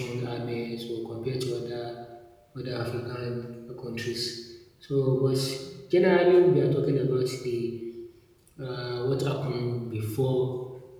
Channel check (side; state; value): both; identical; correlation 1.00